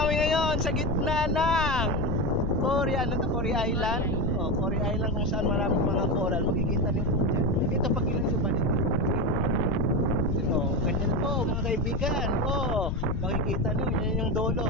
ngayon sa gitna ng Cory, Cory Island. Cory Island kung saan maraming mga coral. Makikita niyo po dyan. Ito pag ilan sa balik. Ganyan po mga kaibigan. Makikita niyo, yan yung dolo.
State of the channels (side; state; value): left; noise; rumble, 1 dB below the sound